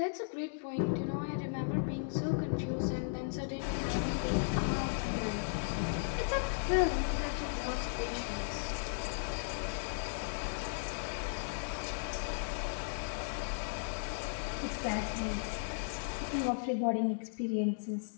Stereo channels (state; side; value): silent; right; digital silence